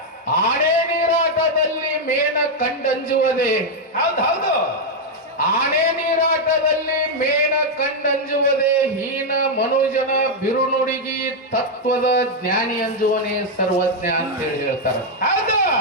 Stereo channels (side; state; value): both; normal; correlation 0.01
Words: ಆನೆ ನೀರಾಟದಲ್ಲಿ ಮೇನ ಕಂಡಂಜುವುದೇ. ಹೌದು, ಆನೆ ನೀರಾಟದಲ್ಲಿ ಮೇನ ಕಂಡಂಜುವುದೇ. ಹೀನ ಮನುಜನ ಬಿರುನುಡಿಗಿ ತತ್ವದ ಜ್ಞಾನಿ ಅಂಜುವನೇ ಸರ್ವಜ್ಞ ಅಂತೇಳಿ ಹೇಳ್ತಾರ. ಹೌದು,